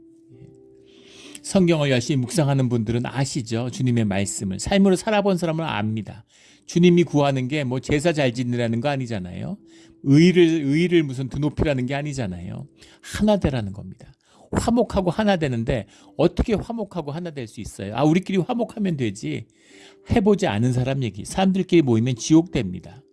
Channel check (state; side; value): identical; both; correlation 1.00